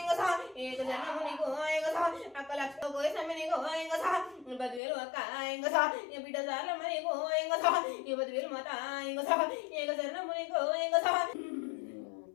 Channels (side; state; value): right; drops out; at 4.8 s